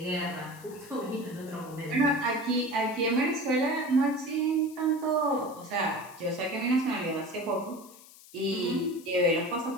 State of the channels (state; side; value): noise; left; hiss, 21 dB below the sound